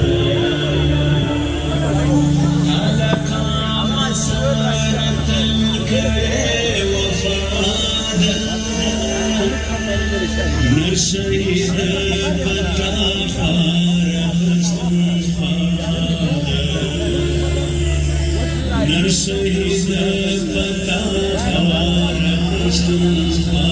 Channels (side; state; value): both; identical; correlation 1.00